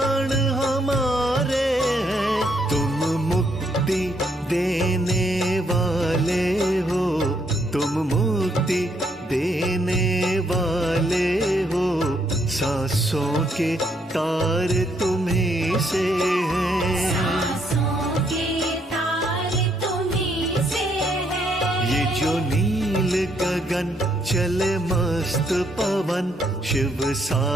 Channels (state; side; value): normal; both; correlation 0.72